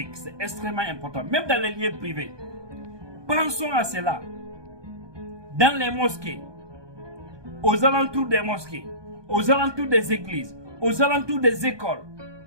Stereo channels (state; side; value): late; left; 1.2 ms